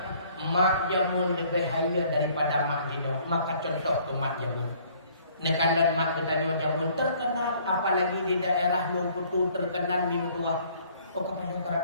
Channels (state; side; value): inverted; both; correlation -0.59